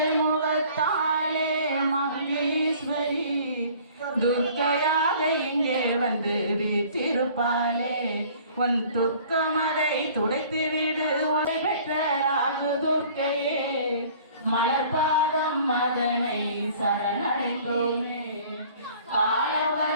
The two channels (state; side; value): inverted; both; correlation -0.51